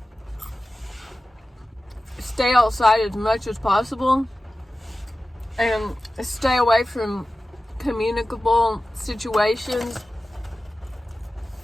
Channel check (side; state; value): both; normal; correlation 0.95